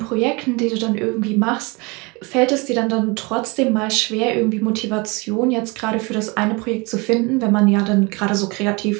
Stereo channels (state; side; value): quieter; left; 27.3 dB